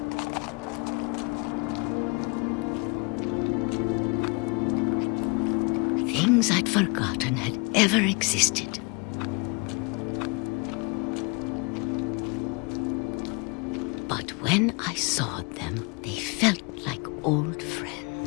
Things I'd forgotten had ever existed. But when I saw them, they felt like old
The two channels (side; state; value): right; quieter; 30.9 dB